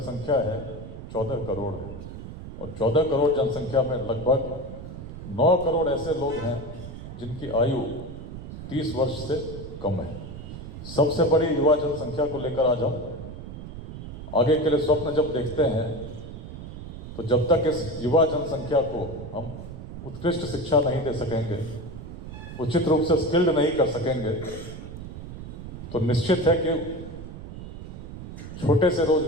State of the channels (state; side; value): noise; right; rumble, 11 dB below the sound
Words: है 14 करोड़ है, और 14 करोड़ जनसंख्या में लगभग 9 करोड़ ऐसे लोग हैं जिनकी आयु 30 वर्ष से कम है। सबसे बड़ी युवा जनसंख्या को लेकर आज हम आगे के लिए स्वप्न जब देखते हैं, तो जब तक इस युवा जनसंख्या को हम उत्कृष्ट शिक्षा नहीं दे सकेंगे, उचित रूप से स्किल्ड नहीं कर सकेंगे, तो निश्चित है कि छोटे से